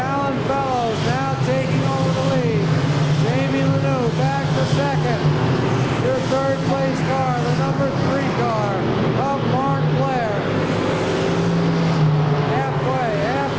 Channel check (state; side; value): identical; both; correlation 1.00